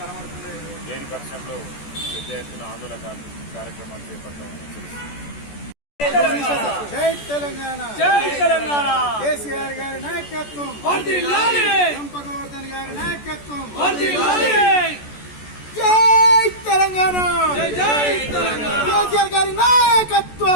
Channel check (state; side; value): late; right; 14 ms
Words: లేని పక్షంలో పెద్ద ఎత్తున ఆందోళన కార్యక్రమాలు చేపడతామని జై తెలంగాణ, జై తెలంగాణ. కేసీఆర్ గారి నాయకత్వం, వర్ధిల్లాలి. గోవర్ధన్ గారి నాయకత్వం, వర్ధిల్లాలి. జై తెలంగాణ, జై జై తెలంగాణ. కేసీఆర్ గారి